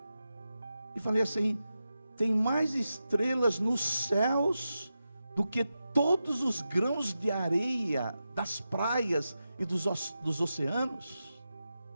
e falei assim: tem mais estrelas nos céus do que todos os grãos de areia das praias e dos oceanos.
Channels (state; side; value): inverted; both; correlation -0.90